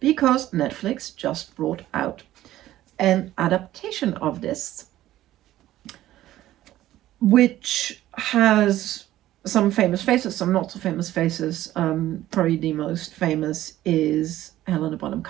Because Netflix just brought out an adaptation of this, which has some famous faces, some not so famous faces. Probably the most famous is Helena Bonham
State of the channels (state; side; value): quieter; left; 14.3 dB